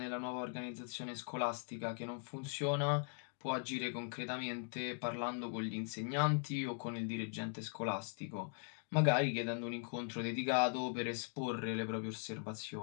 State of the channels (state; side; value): silent; right; 51 dB below the other